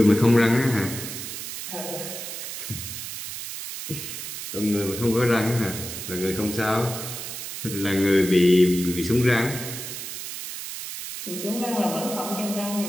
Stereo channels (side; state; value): right; noise; hiss, 8 dB below the sound